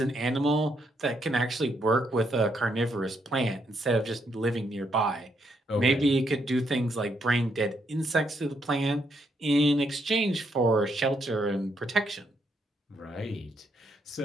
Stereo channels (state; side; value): normal; both; correlation 0.76